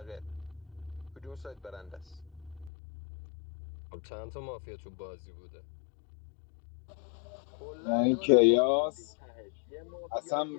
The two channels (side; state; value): right; drops out; at 2.7 s